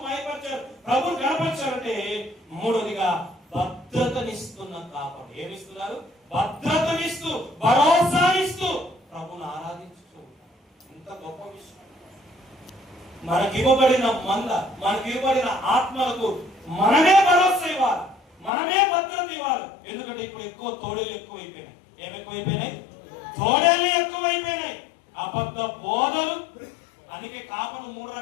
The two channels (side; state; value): right; drops out; at 18.5 s